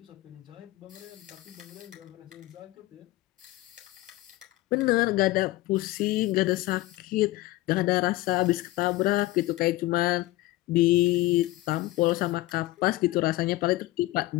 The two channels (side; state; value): right; quieter; 18.0 dB